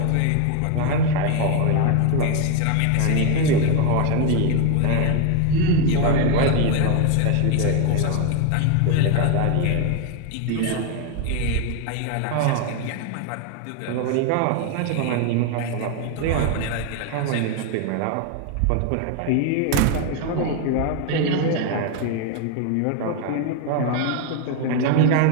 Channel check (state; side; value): different; both; correlation 0.01